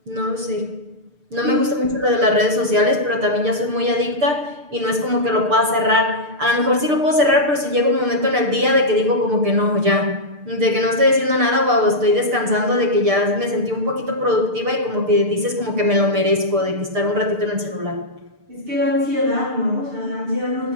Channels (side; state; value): left; late; 6.7 ms